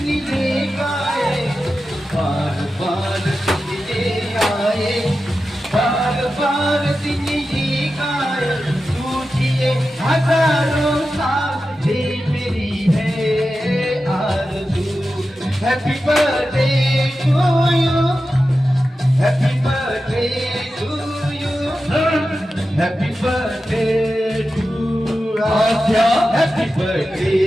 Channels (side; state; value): both; normal; correlation 0.92